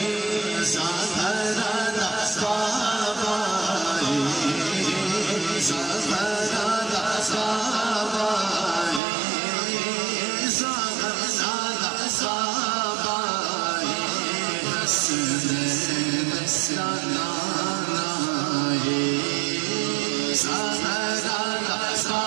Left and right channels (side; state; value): left; drops out; at 9.0 s